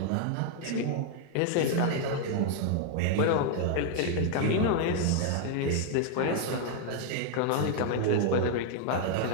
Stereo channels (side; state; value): both; different; correlation 0.00